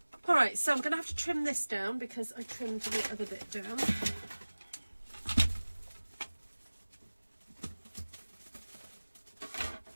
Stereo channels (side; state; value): both; inverted; correlation -1.00